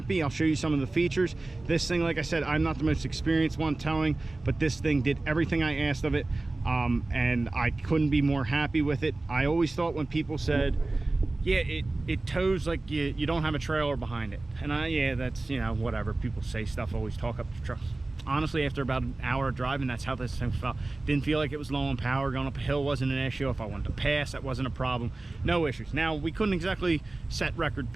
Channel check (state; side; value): quieter; left; 3.0 dB